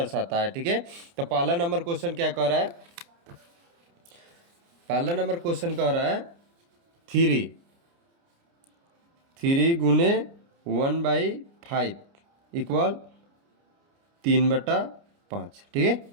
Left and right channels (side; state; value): left; late; 29 ms